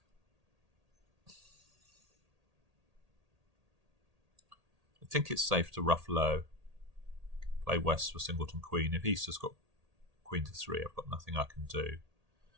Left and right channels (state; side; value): late; left; 1.8 ms